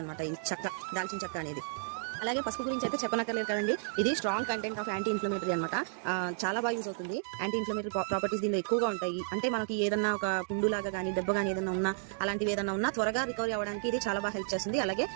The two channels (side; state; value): left; silent; digital silence